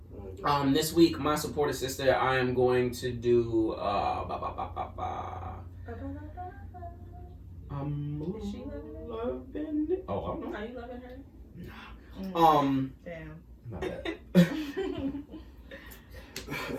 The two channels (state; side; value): identical; both; correlation 1.00